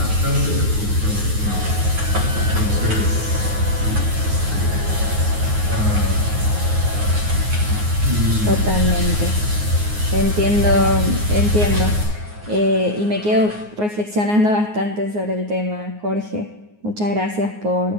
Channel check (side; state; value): left; late; 9.6 ms